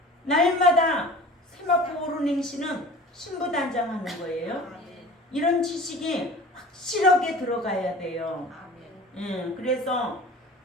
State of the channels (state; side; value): normal; both; correlation 0.41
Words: 날마다 세마포 오른 행시는 신부 단장하는 거예요. 이런 지식이 확실하게 들어가야 돼요. 그래서